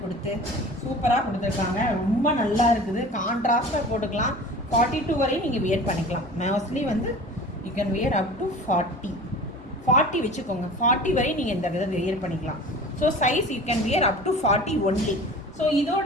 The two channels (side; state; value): both; normal; correlation 0.40